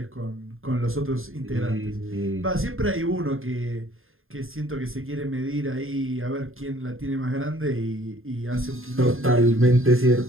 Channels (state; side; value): late; left; 0.60 ms